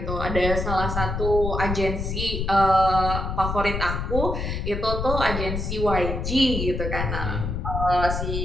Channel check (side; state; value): left; noise; rumble, 3 dB below the sound